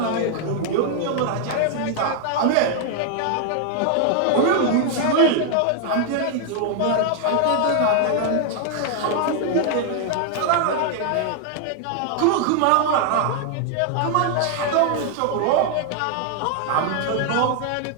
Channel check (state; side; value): different; both; correlation 0.00